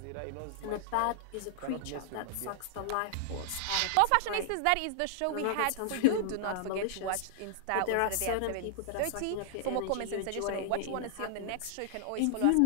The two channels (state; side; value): different; both; correlation -0.01